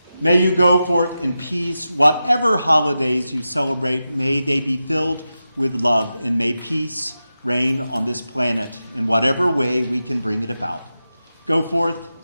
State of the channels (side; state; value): both; inverted; correlation -0.92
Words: May you go forth in peace. Whatever holidays you celebrate, may they be filled with love, and may peace reign on this planet in whatever way we can bring it about. Go forth,